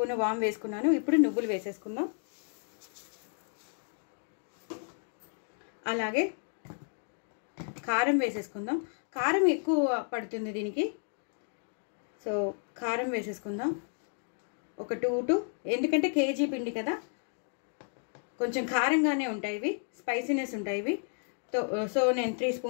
వామ్ వేసుకున్నాను. ఇప్పుడు నువ్వులు వేసేసుకుందాం. అలాగే కారం వేసేసుకుందాం. కారం ఎక్కువ పడుతుంది దీనికి, సో కారం వేసేసుకుందాం. ఒక 2 ఎందుకంటే కేజీ పిండి కదా, కొంచెం కారంగానే ఉంటాయి ఇవి, స్పైసీనెస్ ఉంటాయి ఇవి. సో నేను 3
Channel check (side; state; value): right; silent; 56 dB below the other